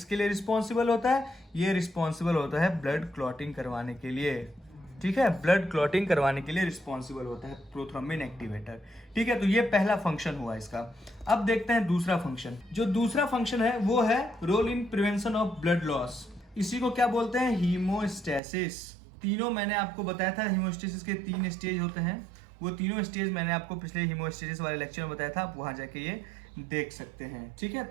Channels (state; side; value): drops out; left; at 18.4 s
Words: लिए रिस्पॉन्सिबल होता है? ये रिस्पॉन्सिबल होता है ब्लड क्लॉटिंग करवाने के लिए, ठीक है। ब्लड क्लॉटिंग करवाने के लिए रिस्पॉन्सिबल होता है प्रोथ्रोम्बिन एक्टिवेटर, ठीक है। तो ये पहला फंक्शन हुआ इसका। अब देखते हैं दूसरा फंक्शन। जो दूसरा फंक्शन है वो है role in prevention of blood loss. इसी को क्या बोलते हैं? हीमोस्टेसिस। तीनों मैंने आपको बताया था, हीमोस्टेसिस के 3 स्टेज होते हैं। वो तीनों स्टेज मैंने आपको पिछले हीमोस्टेसिस वाले लेक्चर में बताया था, आप वहां जाके ये देख सकते हैं, ठीक है।